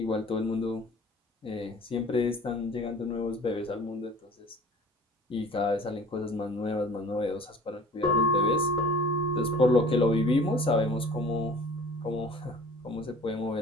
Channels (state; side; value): normal; both; correlation 0.47